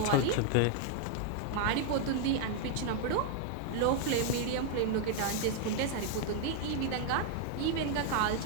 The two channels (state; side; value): different; both; correlation 0.00